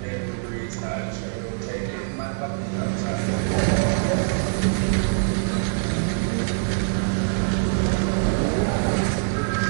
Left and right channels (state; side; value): silent; left; 57 dB below the other